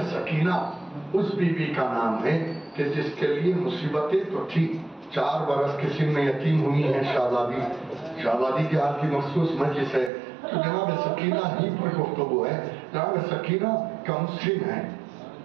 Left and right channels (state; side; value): drops out; left; at 10.1 s